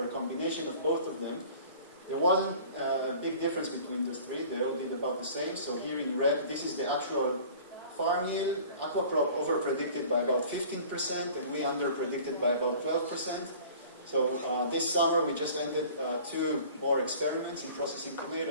a combination of both of them. There wasn't a big difference between those three. They all did about the same. So here in red, this is the actual farm yield. Aqua crop over-predicted by about 15%, and we under-predicted by about 12%. So this summer we just ended 2 more experiments in processing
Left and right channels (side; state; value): both; inverted; correlation -0.47